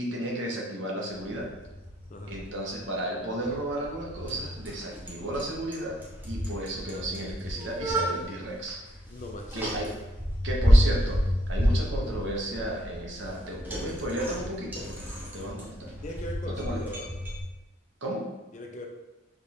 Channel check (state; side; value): normal; both; correlation 0.71